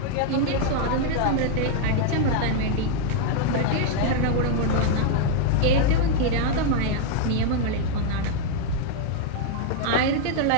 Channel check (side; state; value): both; different; correlation 0.00